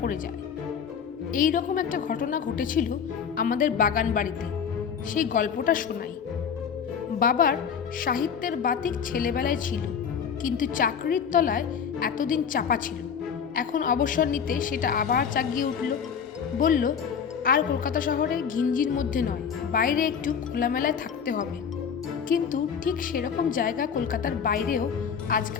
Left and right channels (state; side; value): quieter; right; 7.1 dB